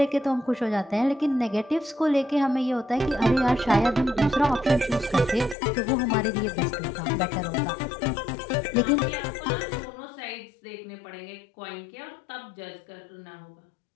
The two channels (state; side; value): drops out; right; at 5.6 s